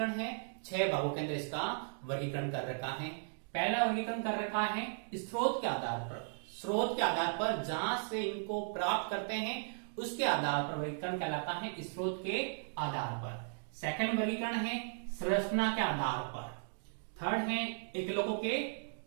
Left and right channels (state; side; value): silent; left; digital silence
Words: है? 6 भागों के अंदर इसका वर्गीकरण कर रखा है। पहला वर्गीकरण कर रखा है स्रोत के आधार पर। स्रोत के आधार पर जहां से इनको प्राप्त करते हैं उसके आधार पर वर्गीकरण कहलाता है स्रोत के आधार पर। सेकंड वर्गीकरण है संरचना के आधार पर। थर्ड है एकलकों के